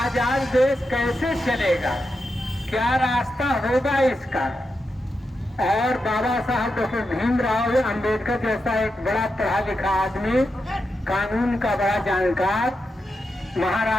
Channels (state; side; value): normal; both; correlation 0.87